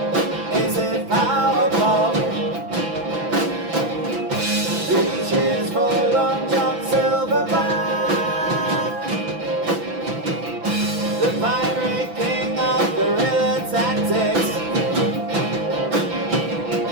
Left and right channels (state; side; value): late; left; 6.0 ms